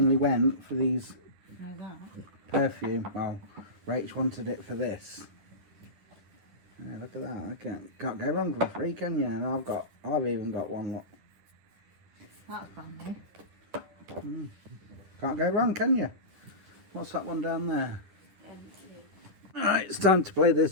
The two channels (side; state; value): left; late; 10 ms